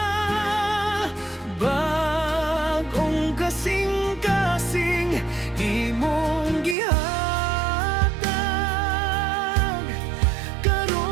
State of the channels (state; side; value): drops out; left; at 6.8 s